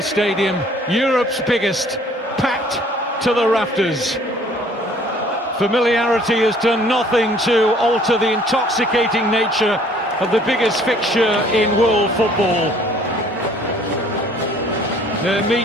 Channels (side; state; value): both; normal; correlation 0.57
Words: stadium, Europe's biggest, packed to the rafters. Familiarity has done nothing to alter the intoxicating nature of the biggest fixture in world football. They're